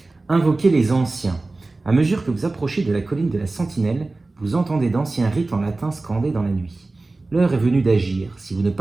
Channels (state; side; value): quieter; left; 3.3 dB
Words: invoquez les anciens. À mesure que vous approchez de la colline de la Sentinelle, vous entendez d'anciens rites en latin scandés dans la nuit. L'heure est venue d'agir. Si vous ne